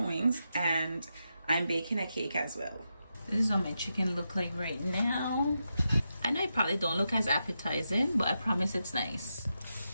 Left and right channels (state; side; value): inverted; both; correlation -0.86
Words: wings, and I'm baking a cake as well. This is what my chicken look like right now. I know it probably don't look as appetizing, but I promise it's nice.